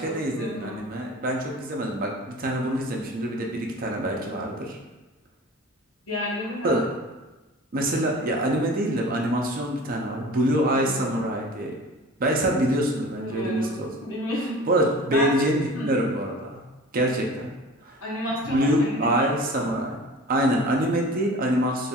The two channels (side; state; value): both; normal; correlation 0.40